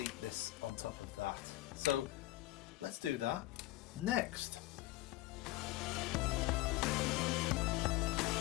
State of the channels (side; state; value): right; quieter; 17.7 dB